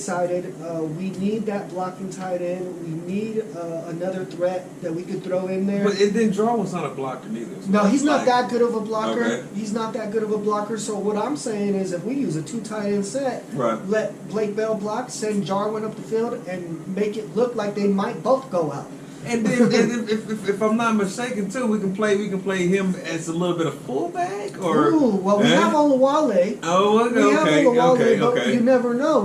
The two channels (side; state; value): both; identical; correlation 1.00